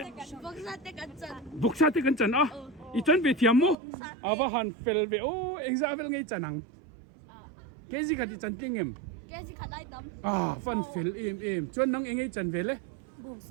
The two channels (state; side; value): drops out; left; at 3.8 s